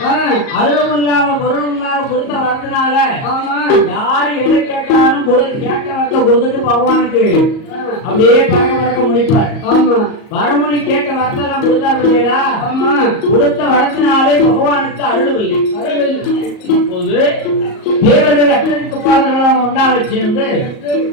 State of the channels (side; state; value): right; late; 38 ms